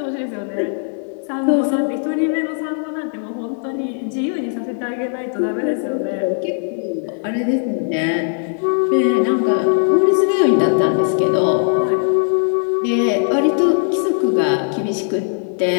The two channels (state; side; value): silent; right; 67 dB below the other